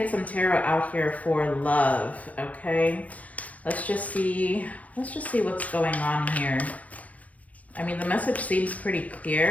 some tarot out here for love, okay? Let's just see what's going on here. I mean, the message seems pretty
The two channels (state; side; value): late; right; 0.068 ms